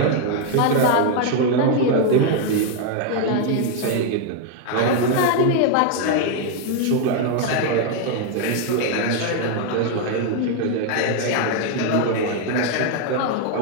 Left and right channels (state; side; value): different; both; correlation 0.01